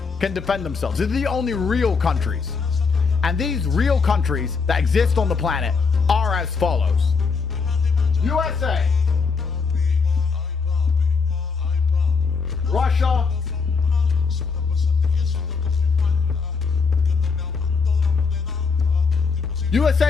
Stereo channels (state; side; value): quieter; right; 5.0 dB